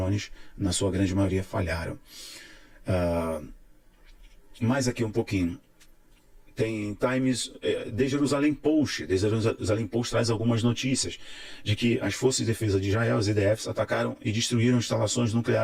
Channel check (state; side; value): identical; both; correlation 1.00